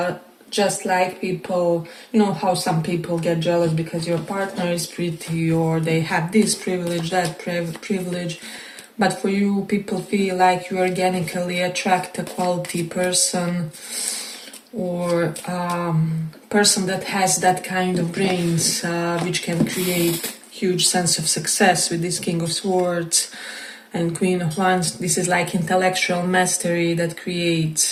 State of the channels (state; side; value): identical; both; correlation 1.00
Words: just like people, you know how some people get jealous because your partner is pretty, or they have this privilege, that privilege. But for you, people feel like you organically attract a quality person, or person that has that kind of brains, which can create huge sense of success with this King of Swords and Queen of Wands. This is like intellectual mastery that